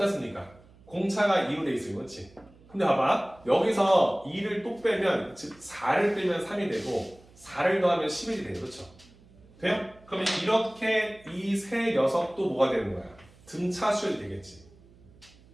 공차가 2로 돼 있어요. 그렇지? 근데 봐봐. 여기서 2를 또 빼면 즉 4를 빼면 3이 되고 4를 더하면 11이 돼요. 그렇죠? 돼요? 그러면 이렇게 이 세 녀석도 뭐가 되는 거야? 등차 수열이 되겠지.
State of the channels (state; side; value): noise; right; hum, 26 dB below the sound